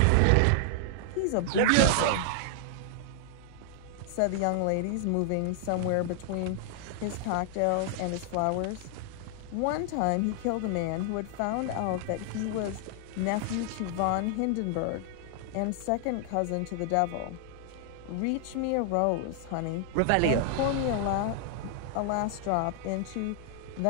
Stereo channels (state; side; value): different; both; correlation 0.00